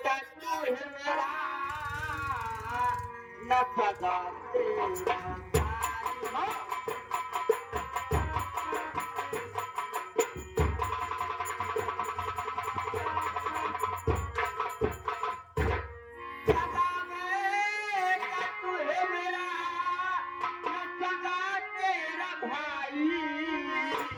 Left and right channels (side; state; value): both; identical; correlation 1.00